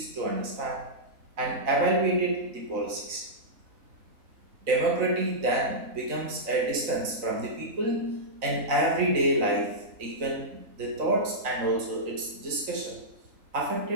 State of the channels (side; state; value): left; late; 3.9 ms